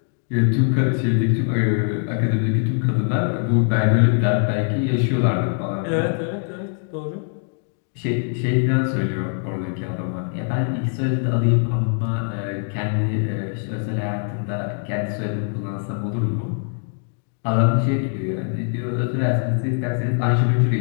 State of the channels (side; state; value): right; silent; 58 dB below the other